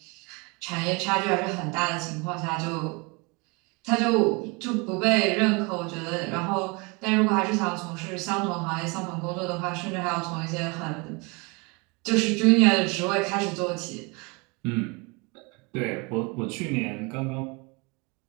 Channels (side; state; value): left; quieter; 29.0 dB